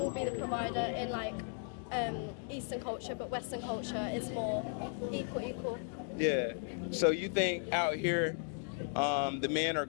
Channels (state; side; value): silent; right; 54 dB below the other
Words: be the provider in like Eastern culture, but Western culture is more equal. Yeah. So you think out here, the men are